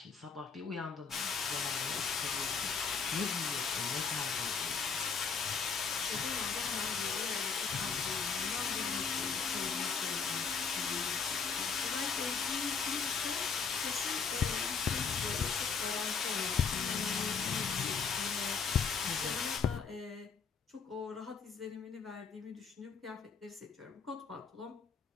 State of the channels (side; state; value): right; quieter; 5.8 dB